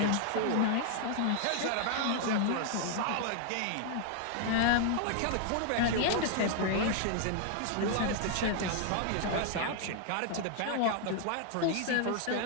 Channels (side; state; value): both; different; correlation 0.00